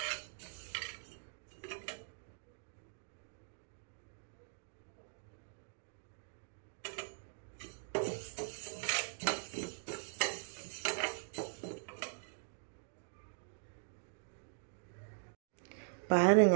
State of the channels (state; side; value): silent; left; digital silence